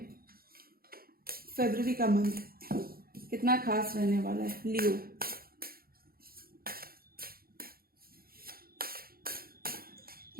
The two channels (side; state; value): left; late; 0.43 ms